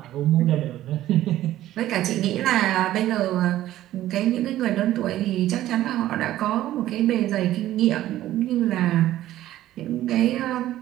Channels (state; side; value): quieter; left; 13.9 dB